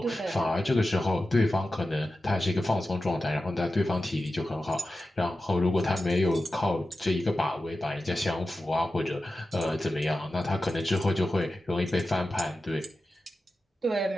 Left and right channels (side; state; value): both; normal; correlation 0.93